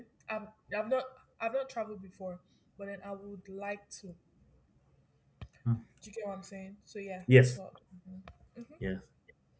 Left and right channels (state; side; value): identical; both; correlation 1.00